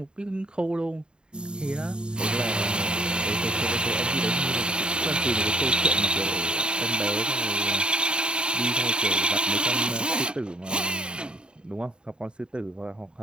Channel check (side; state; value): left; late; 0.050 ms